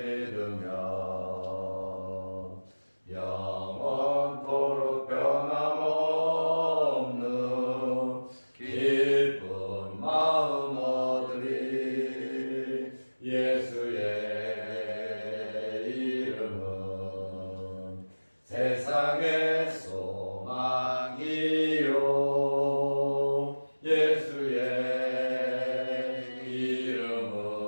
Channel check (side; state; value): both; inverted; correlation -1.00